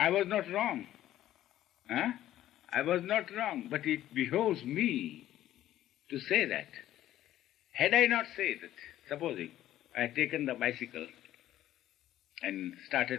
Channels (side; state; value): right; quieter; 13.1 dB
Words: was not wrong. Huh? I was not wrong. But it behoves me to say that. Had I not said it, supposing I had taken the bicycle and